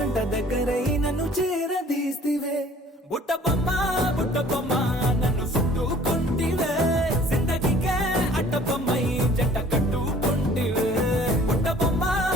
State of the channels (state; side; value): normal; both; correlation 0.53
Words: దగ్గరై నన్ను చేరదీస్తివే బుట్ట బొమ్మ నన్ను చుట్టుకుంటివే జిందగీకే అట్ట బొమ్మై జంట కట్టుకుంటివే బుట్ట